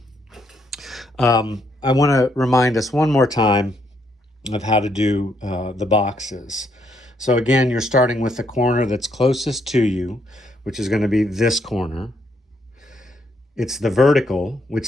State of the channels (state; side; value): normal; both; correlation 0.74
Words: I want to remind us one more time of how to do the boxes. So again, you're starting with the corner that's closest to you, which is going to be this corner. It's the vertical,